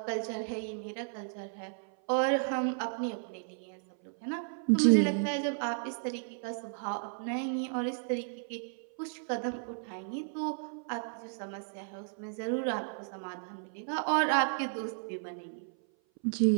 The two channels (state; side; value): silent; left; 55 dB below the other